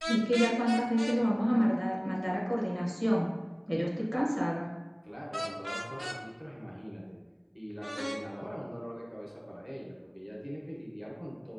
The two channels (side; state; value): both; identical; correlation 1.00